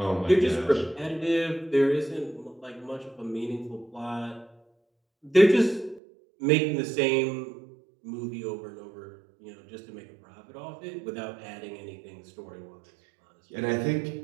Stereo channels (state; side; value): drops out; left; at 6.0 s